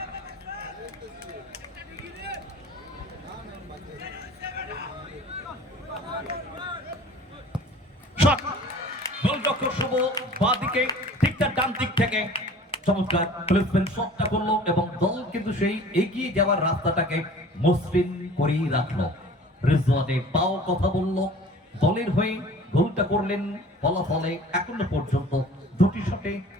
গোলরক্ষক শুভ বাঁ দিকে, ঠিক তার ডান দিক থেকে চমৎকার প্লেসমেন্ট শটটা করলো এবং দল কিন্তু সেই এগিয়ে যাওয়ার রাস্তাটাকে মসৃণ করেই রাখলো। রিজওয়ানের পাও কথা বলল, দলের হয়ে গোলটা করলেন। ফলাফলে এখনো পর্যন্ত দুটি শটে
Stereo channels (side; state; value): both; normal; correlation 0.46